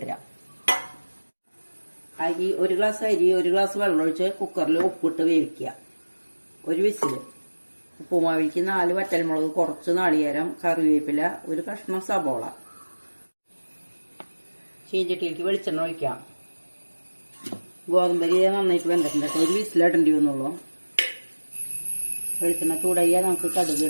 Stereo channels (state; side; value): inverted; both; correlation -1.00